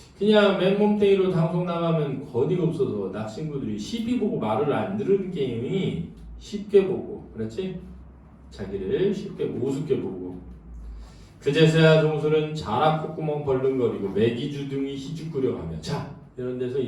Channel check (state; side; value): identical; both; correlation 1.00